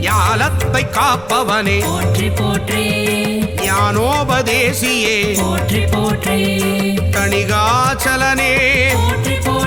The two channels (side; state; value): right; noise; rumble, 21 dB below the sound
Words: ஞாலத்தை காப்பவனே போற்றி போற்றி ஞானோபதேசியே போற்றி போற்றி தணிகாச்சலனே போற்றி